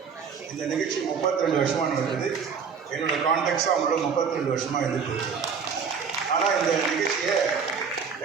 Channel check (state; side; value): quieter; left; 6.1 dB